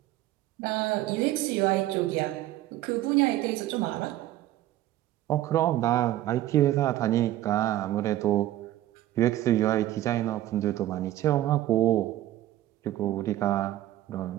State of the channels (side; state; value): left; quieter; 14.2 dB